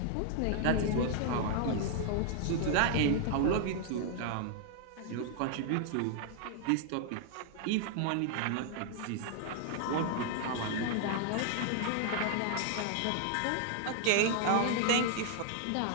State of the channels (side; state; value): both; different; correlation 0.00